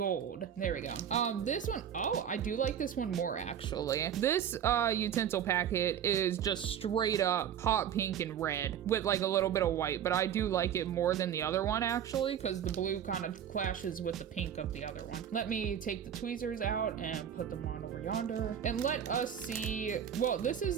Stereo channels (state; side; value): quieter; left; 9.2 dB